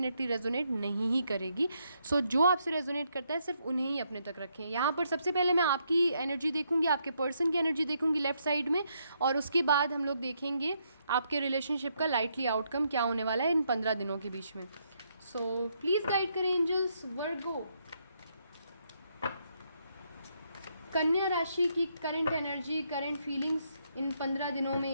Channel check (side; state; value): both; inverted; correlation -0.76